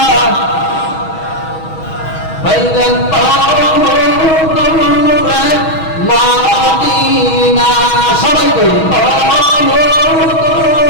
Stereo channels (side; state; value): right; late; 6.2 ms